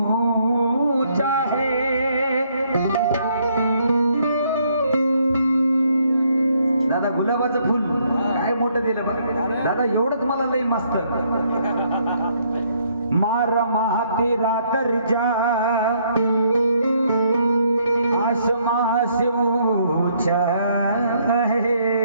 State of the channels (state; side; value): inverted; both; correlation -0.70